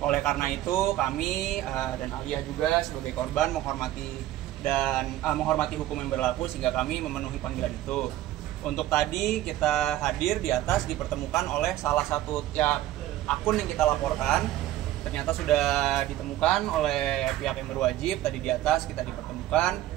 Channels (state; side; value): quieter; left; 14.2 dB